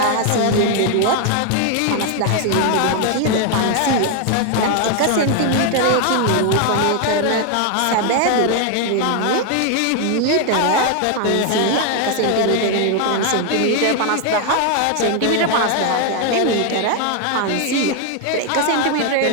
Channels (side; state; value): both; different; correlation 0.01